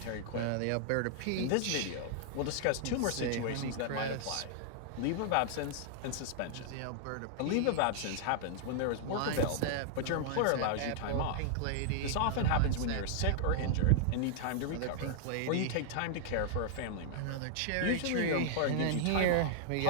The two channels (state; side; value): different; both; correlation -0.01